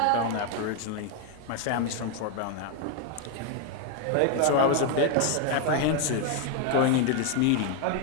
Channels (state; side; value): different; both; correlation 0.01